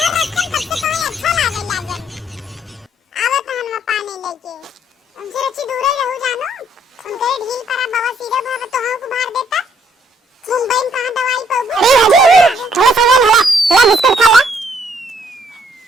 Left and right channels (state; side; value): normal; both; correlation 0.67